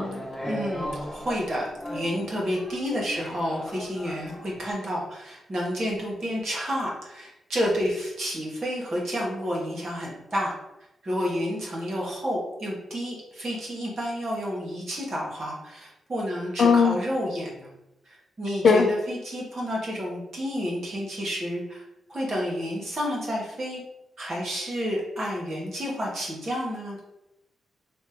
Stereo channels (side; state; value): both; normal; correlation 0.82